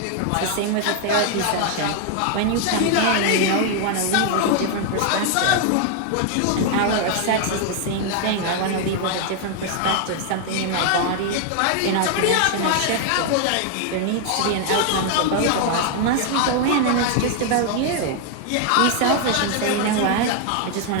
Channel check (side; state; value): both; different; correlation 0.00